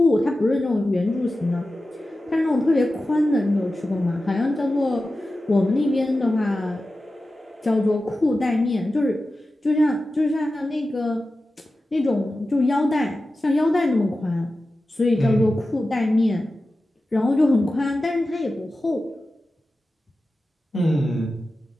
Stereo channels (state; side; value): normal; both; correlation 0.94